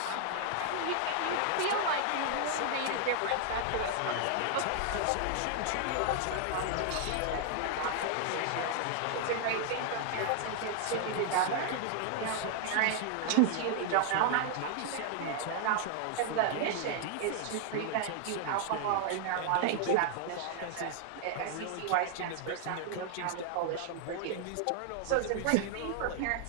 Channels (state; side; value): different; both; correlation 0.00